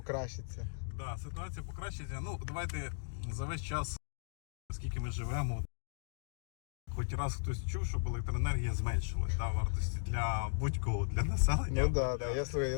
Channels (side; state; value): right; silent; digital silence